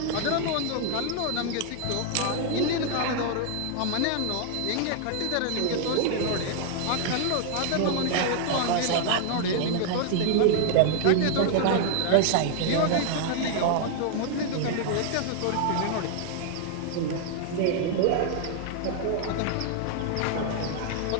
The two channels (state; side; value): different; both; correlation 0.00